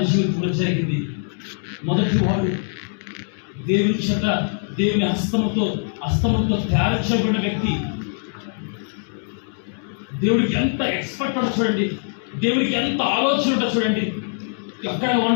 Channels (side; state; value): right; silent; digital silence